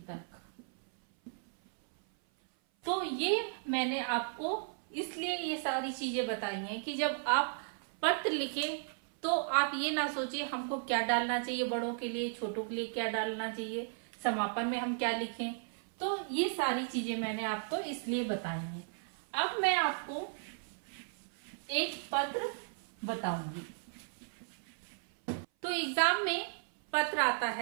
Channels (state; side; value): silent; left; 54 dB below the other